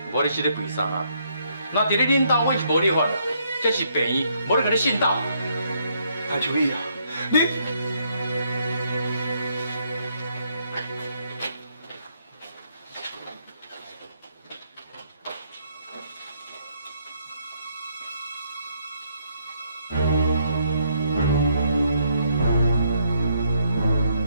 无你是咧为啥啊？那伫咧恁兜，阮是无你法啦。这是病院，无你甲你信道。谭秋义啊，你。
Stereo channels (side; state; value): both; inverted; correlation -0.72